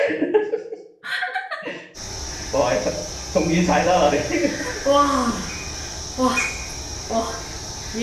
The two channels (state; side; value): identical; both; correlation 1.00